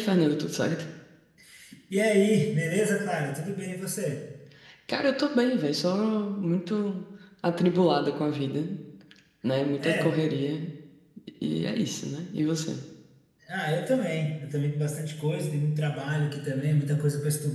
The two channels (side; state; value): both; identical; correlation 1.00